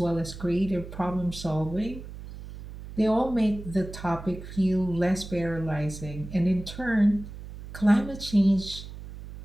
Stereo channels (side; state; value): right; noise; hum, 12 dB below the sound